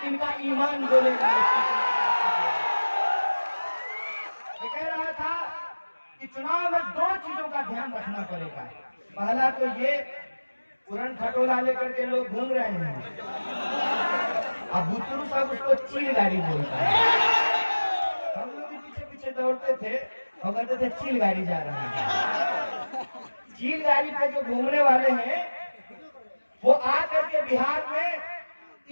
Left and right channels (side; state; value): both; inverted; correlation -1.00